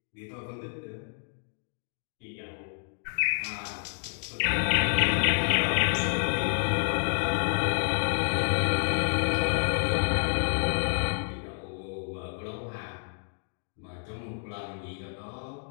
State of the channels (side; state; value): right; silent; digital silence